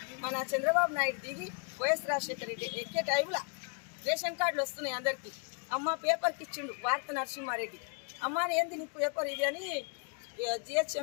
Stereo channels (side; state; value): right; quieter; 38.8 dB